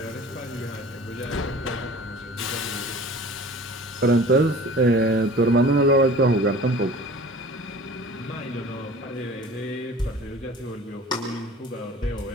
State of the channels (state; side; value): normal; both; correlation 0.43